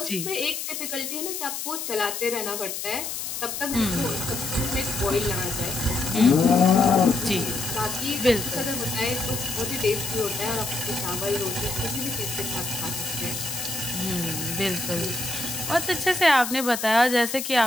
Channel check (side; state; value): left; noise; hiss, 5 dB below the sound